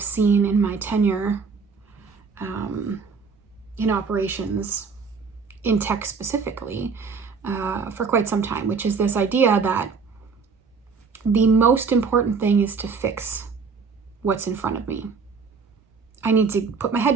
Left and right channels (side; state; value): left; quieter; 5.1 dB